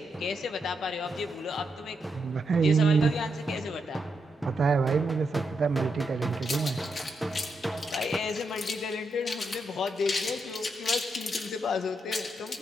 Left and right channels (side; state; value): both; normal; correlation 0.82